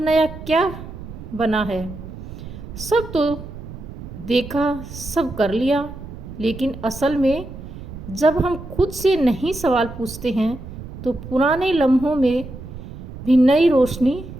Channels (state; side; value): noise; right; rumble, 12 dB below the sound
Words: क्या बना है, सब तो देखा, सब कर लिया। लेकिन असल में जब हम खुद से नहीं सवाल पूछते हैं तो पुराने लम्हों में भी नई रोशनी